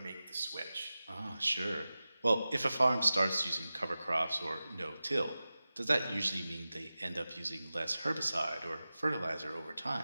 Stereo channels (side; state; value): both; inverted; correlation -0.95